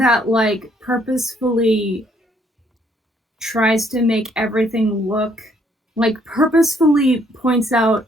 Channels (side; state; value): both; normal; correlation 0.67